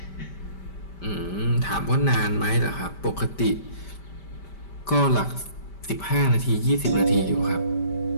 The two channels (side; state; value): right; late; 5.1 ms